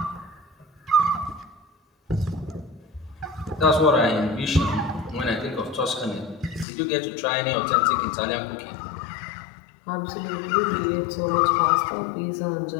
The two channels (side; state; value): right; drops out; at 6.7 s